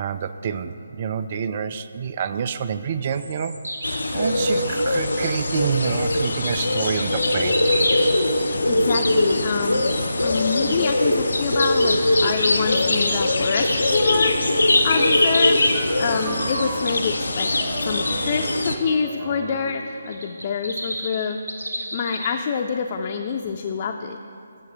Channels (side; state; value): both; inverted; correlation -0.84